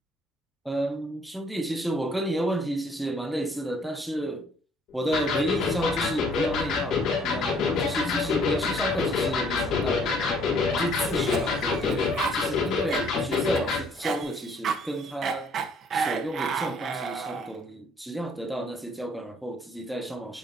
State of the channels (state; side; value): normal; both; correlation 0.61